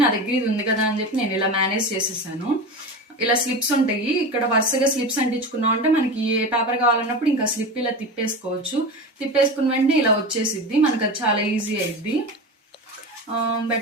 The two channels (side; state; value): both; normal; correlation 0.26